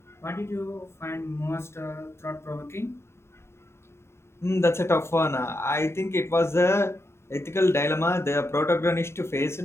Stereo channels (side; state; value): right; late; 0.13 ms